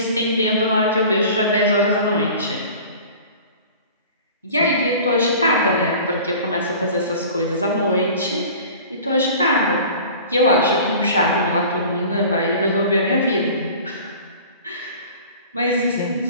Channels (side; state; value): both; inverted; correlation -0.42